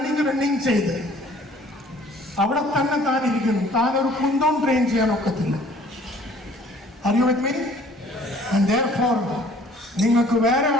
ചെയ്ത് അവിടെ തന്നെ താൻ ഇരിക്കുന്നു. താൻ ഒരു കുന്തം ട്രെയിൻ ചെയ്യാൻ ഒക്കത്തില്ല. Are you with me? And therefore നിങ്ങൾക്ക് വേറെ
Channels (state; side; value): normal; both; correlation 0.55